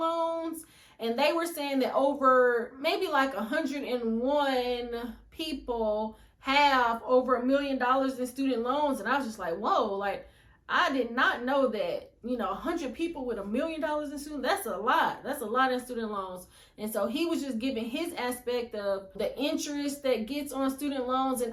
And they were saying that over maybe like 101 people have over $1 million in student loans. And I was just like, whoa, like, I did not know that, 100 people with $1 million in student, that's a lot. That's a lot in student loans. And so he was just giving his aspect of the interest that gets on student loans.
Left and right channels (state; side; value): identical; both; correlation 1.00